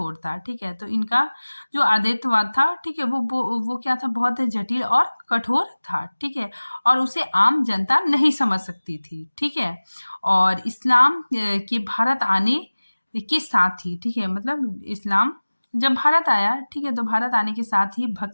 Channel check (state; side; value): inverted; both; correlation -1.00